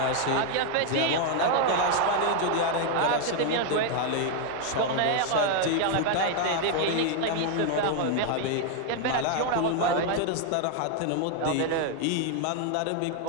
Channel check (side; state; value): both; different; correlation 0.00